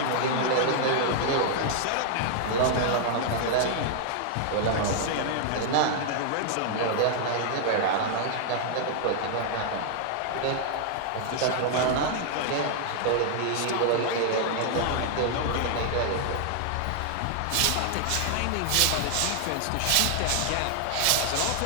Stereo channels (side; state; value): both; different; correlation -0.01